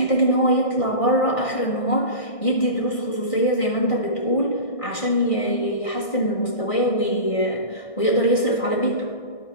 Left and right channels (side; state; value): right; late; 1.6 ms